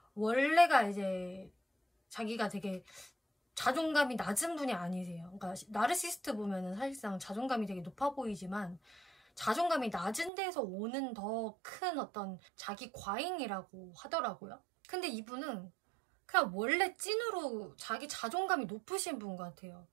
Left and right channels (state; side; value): drops out; left; at 10.3 s